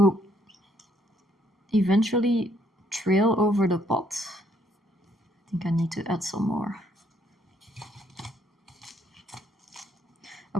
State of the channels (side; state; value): both; normal; correlation 0.69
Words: eventually trail over the pot. I think I need to add some more.